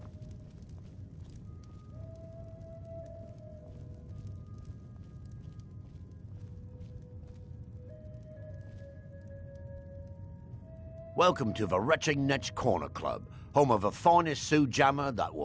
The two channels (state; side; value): identical; both; correlation 1.00